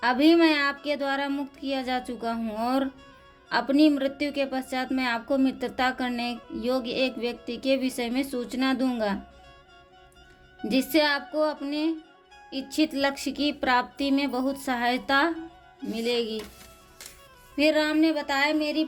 अभी मैं आपके द्वारा मुक्त किया जा चुका हूँ और अपनी मृत्यु के पश्चात मैं आपको मित्रता करने योग्य एक व्यक्ति के विषय में सूचना दूंगा, जिससे आपको अपने इच्छित लक्ष्य की प्राप्ति में बहुत सहायता मिलेगी। फिर राम ने बताया, मेरी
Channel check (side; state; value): both; identical; correlation 1.00